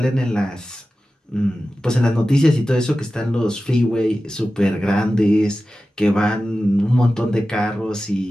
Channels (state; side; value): normal; both; correlation 0.94